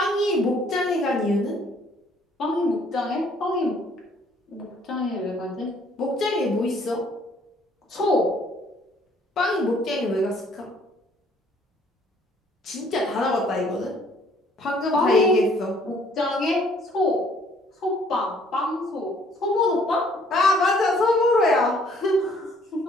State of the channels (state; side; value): normal; both; correlation 0.61